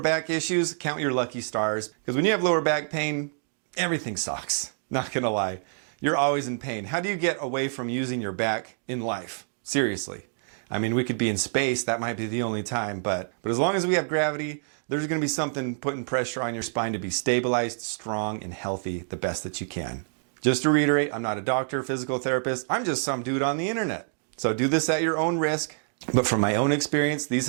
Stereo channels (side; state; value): left; silent; digital silence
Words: issues, count your lucky stars. Because when you have lower back pain, everything sucks. Not gonna lie. You're always in pain. How do you get away from using your back in life? Seriously. I mean, we could be in space. That might be the only time. But as long as we have gravity, there's gonna be something putting pressure on your spine to be stabilized, strong, and healthy the best that you can. Just to reiterate, I'm not a doctor, physical therapist. I'm just some dude on the internet. So do this at your own risk. But from my own experience, these